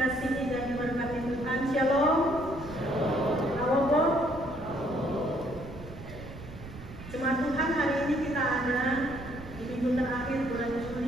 dan diberkati Tuhan, Shalom. Halo. Jemaat Tuhan, hari ini kita ada di minggu terakhir bulan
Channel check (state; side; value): noise; right; rumble, 14 dB below the sound